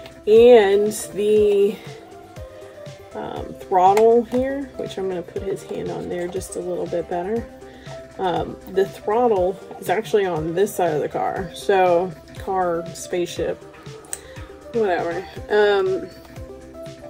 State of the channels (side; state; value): both; identical; correlation 1.00